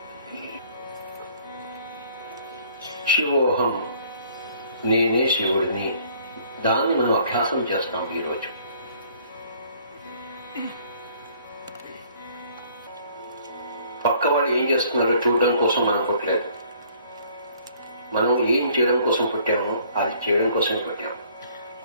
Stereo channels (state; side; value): inverted; both; correlation -0.59